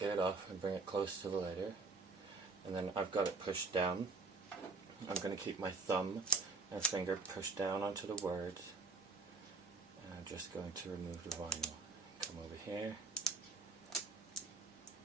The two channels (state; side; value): quieter; left; 4.0 dB